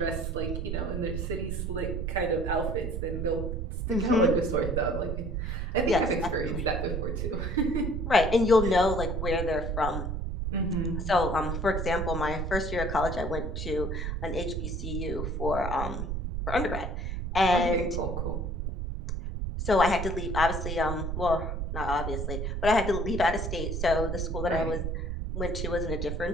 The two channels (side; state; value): right; noise; rumble, 2 dB below the sound